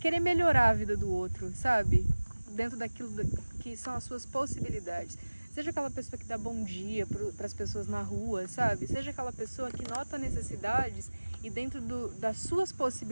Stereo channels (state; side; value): inverted; both; correlation -1.00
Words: melhorar a vida do outro, sabe? Dentro daquilo que são as suas possibilidades. Seja aquela pessoa que dá bom dia para as pessoas na rua, sabe? Seja aquela pessoa que nota necessidades e dentro das suas